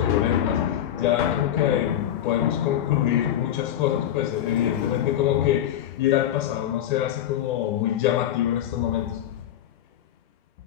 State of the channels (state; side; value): quieter; right; 11.3 dB